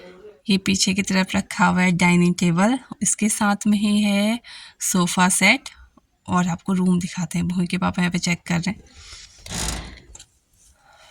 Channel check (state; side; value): identical; both; correlation 1.00